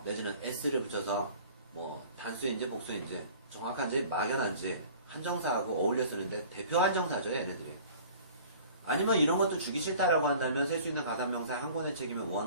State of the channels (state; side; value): inverted; both; correlation -0.47